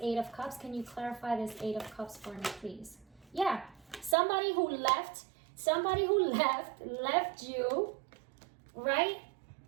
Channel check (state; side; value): drops out; left; at 4.2 s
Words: of Cups. Can you clarify this 8 of Cups for me, please? Yeah, somebody who left you, right?